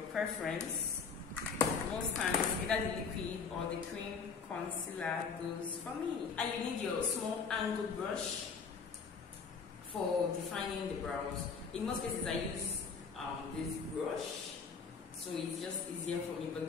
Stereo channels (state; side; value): quieter; right; 5.5 dB